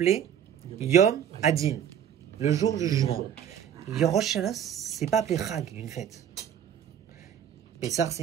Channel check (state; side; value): quieter; left; 9.2 dB